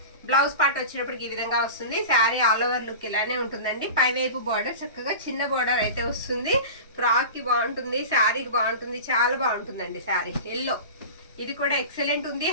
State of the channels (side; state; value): both; inverted; correlation -0.32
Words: బ్లౌజ్ పార్ట్ వచ్చేటప్పటికి ఈ విధంగా వస్తుంది. శారీ ఆల్ ఓవర్ లుక్ ఇలానే ఉంటుందండి. పైవైపు బోర్డర్ చక్కగా చిన్న బోర్డర్ అయితే వస్తుంది. ఫ్రాక్ కి బాగుంటుంది, శారీకి బాగుంటుంది, చాలా బాగుంటుందండి శారీ. ఎల్లో ఇది కూడా ఎక్సలెంట్ ఉంది.